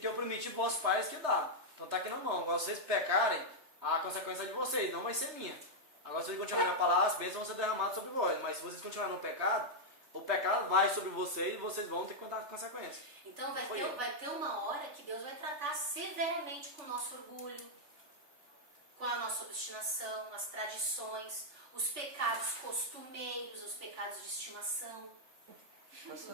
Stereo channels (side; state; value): left; late; 3.3 ms